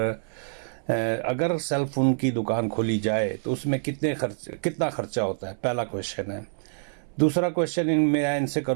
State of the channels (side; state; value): left; silent; 61 dB below the other